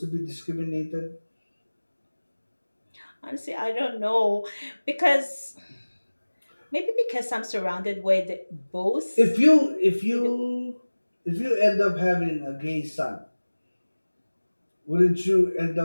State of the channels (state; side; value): inverted; both; correlation -1.00